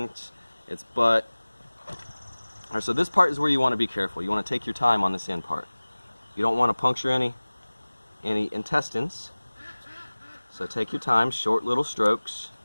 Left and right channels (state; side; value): inverted; both; correlation -1.00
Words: its butt. All right, so this part is where you want to be careful. You want to take your time on this end part. You don't want to puncture any intestines. So take your time, short little strokes.